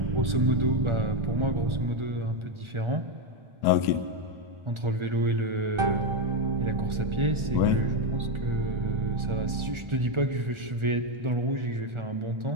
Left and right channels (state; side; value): late; left; 1.4 ms